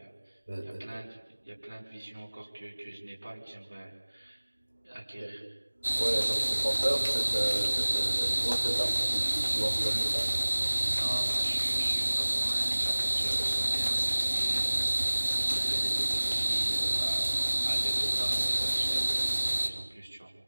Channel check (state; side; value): inverted; both; correlation -1.00